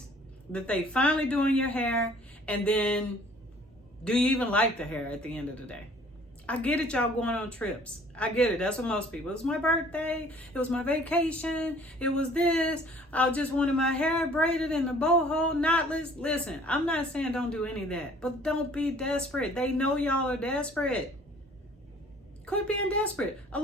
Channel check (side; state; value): both; normal; correlation 0.54